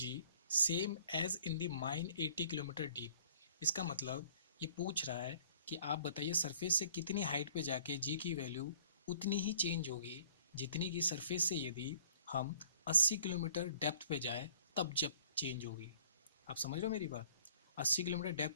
same as in the mine 80 kilometre deep. इसका मतलब ये पूछ रहा है कि आप बताइए सरफेस से कितनी हाइट पे जाके जी की वैल्यू उतनी ही चेंज होगी जितनी की सरफेस से यदि हम 80 किलोमीटर डेप्थ पे जाए तब जब चेंज होगी। आप समझ रहे हो मेरी बात। 80 किलोमीटर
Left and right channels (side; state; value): both; inverted; correlation -0.55